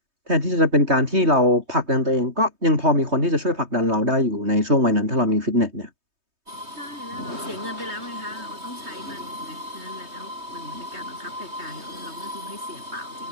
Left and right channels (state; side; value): late; left; 3.2 ms